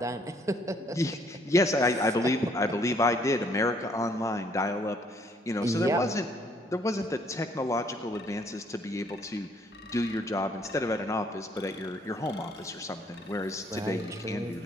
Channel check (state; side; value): normal; both; correlation 0.65